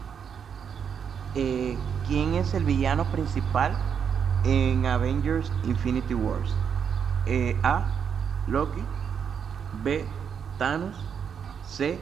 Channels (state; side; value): quieter; left; 7.4 dB